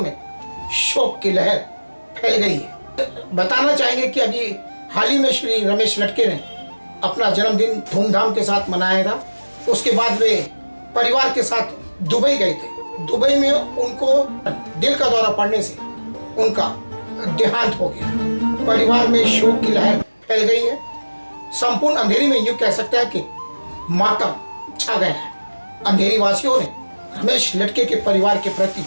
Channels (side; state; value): both; inverted; correlation -1.00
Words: शोक की लहर फैल गई है। बताना चाहेंगे कि अभी हाल ही में श्री रमेश लटके ने अपना जन्मदिन धूमधाम के साथ मनाया था। उसके बाद वे परिवार के साथ दुबई गए थे। दुबई में उनको दिल का दौरा पड़ने से उनका देहांत हो गया। परिवार में शोक की लहर फैल गई है। संपूर्ण अंधेरी में यूं कह सकते हैं कि मातम छा गया है। अंधेरी वासियों ने रमेश लटके के परिवार के प्रति